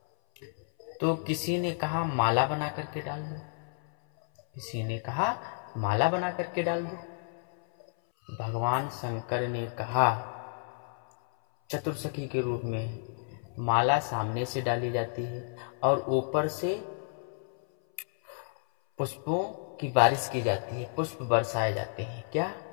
तो किसी ने कहा माला बना करके डाल दो, किसी ने कहा माला बना करके डाल दो। भगवान शंकर ने कहा चतुर्सखी के रूप में माला सामने से डाली जाती है और ऊपर से पुष्पों की बारिश की जाती है, पुष्प बरसाए जाते हैं। क्या?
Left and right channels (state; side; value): silent; right; 57 dB below the other